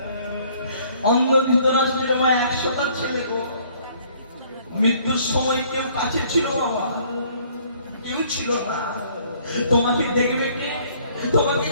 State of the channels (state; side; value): inverted; both; correlation -0.60